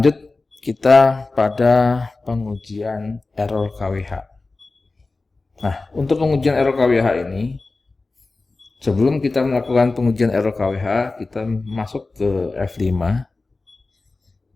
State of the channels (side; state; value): right; quieter; 3.5 dB